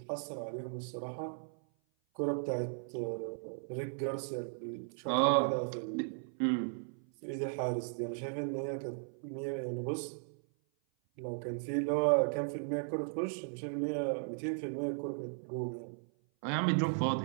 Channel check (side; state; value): left; silent; 53 dB below the other